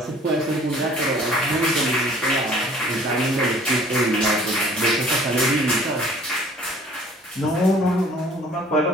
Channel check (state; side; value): normal; both; correlation 0.53